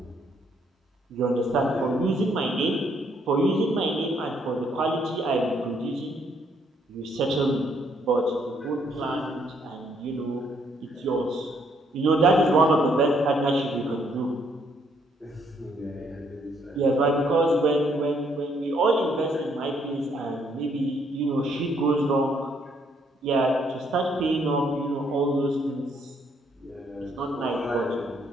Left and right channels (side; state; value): both; normal; correlation 0.69